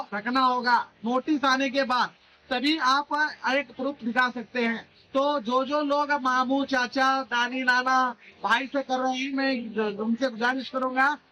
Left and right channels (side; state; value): both; identical; correlation 1.00